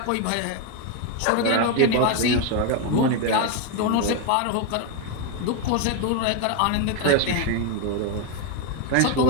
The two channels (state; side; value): different; both; correlation 0.02